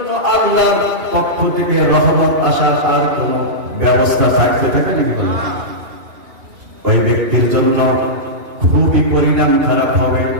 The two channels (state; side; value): late; left; 2.8 ms